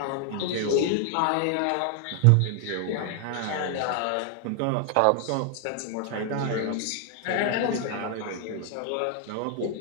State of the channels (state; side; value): different; both; correlation 0.00